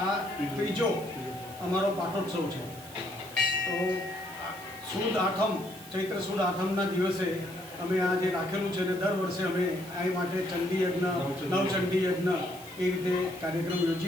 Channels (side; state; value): right; noise; hiss, 17 dB below the sound